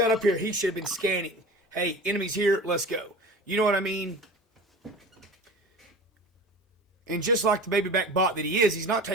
up here, he should have been scanning. Hey, enemies here, let's go. You know what I mean? And just like the baby back bot that he is, he's not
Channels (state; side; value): normal; both; correlation 0.37